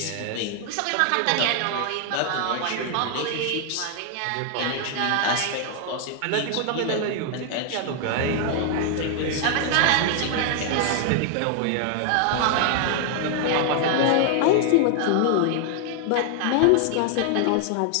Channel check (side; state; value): both; different; correlation 0.00